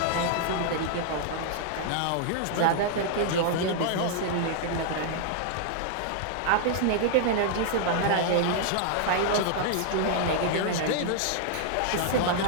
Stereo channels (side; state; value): both; different; correlation -0.01